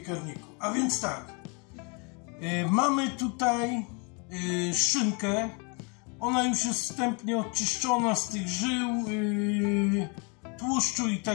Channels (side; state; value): right; quieter; 33.1 dB